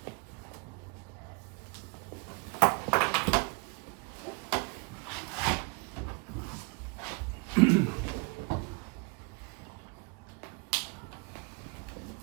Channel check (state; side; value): quieter; left; 29.0 dB